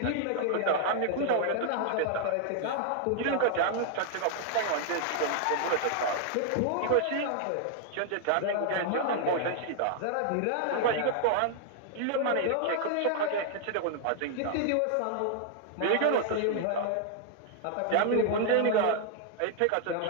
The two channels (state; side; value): different; both; correlation 0.00